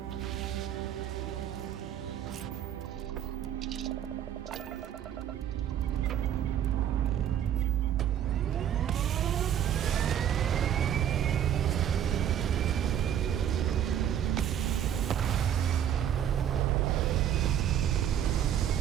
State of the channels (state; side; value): quieter; left; 10.0 dB